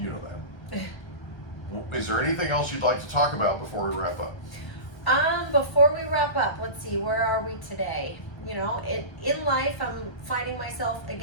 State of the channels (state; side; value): late; right; 1.2 ms